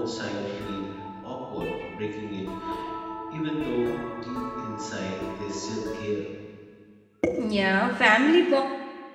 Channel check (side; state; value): both; identical; correlation 1.00